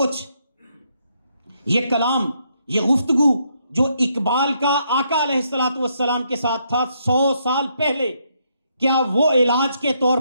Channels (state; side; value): inverted; both; correlation -0.75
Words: یہ کلام، یہ گفتگو جو اقبال کا آقا علیہ السلام کے ساتھ تھا 100 سال پہلے، کیا وہ علاج کے طور